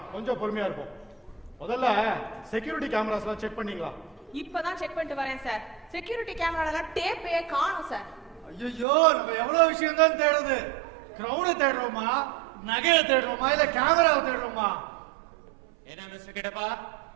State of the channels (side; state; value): left; drops out; at 8.8 s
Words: கொஞ்சம் பொறுமையா இருப்போம். முதல்ல செக்யூரிட்டி கேமராஸ்லாம் செக் பண்ணீங்களா? இப்பதான் செக் பண்ணிட்டு வரேன் சார். செக்யூரிட்டி கேமரால டேப்பே காணோம் சார். ஐயோ, நம்ம எவ்வளவு விஷயம் தான் தேடுது. கிரவுனை தேடுறோமா, நகையை தேடுறோமா, இல்ல கேமராவை தேடுறோமா? என்ன mister Kittappa,